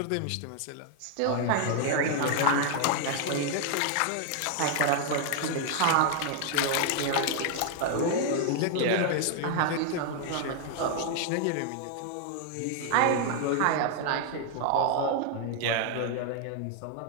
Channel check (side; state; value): both; different; correlation 0.00